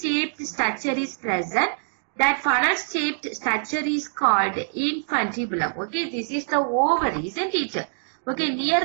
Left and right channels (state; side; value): silent; left; digital silence